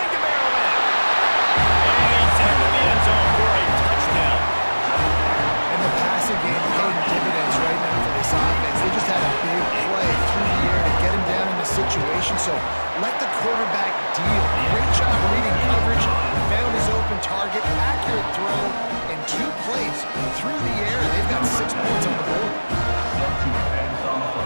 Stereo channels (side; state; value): both; inverted; correlation -1.00